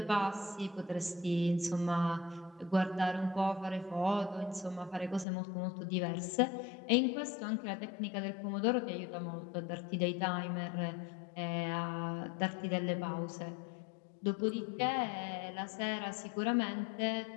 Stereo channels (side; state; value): right; drops out; at 5.2 s